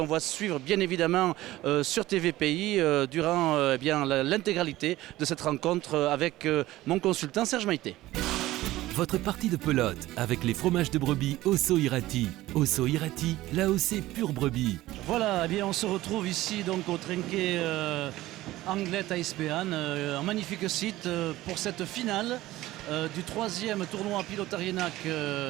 voit suivre bien évidemment sur TVPI durant l'intégralité de cette rencontre avec mon consultant Serge Maïté. Votre partie de pelote avec les fromages de brebis Osso Irati. Osso Irati, l'AOC pure brebis. Voilà, eh bien, on se retrouve ici donc au Trinquet Anglet ISPAN, un magnifique site pour cette finale du troisième tournoi Pilotarinac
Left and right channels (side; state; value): left; quieter; 16.6 dB